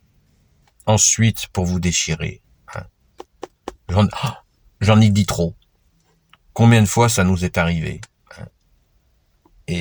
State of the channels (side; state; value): both; identical; correlation 1.00